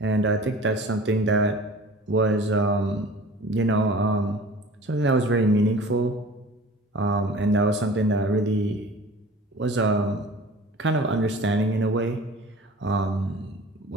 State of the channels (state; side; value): normal; both; correlation 0.43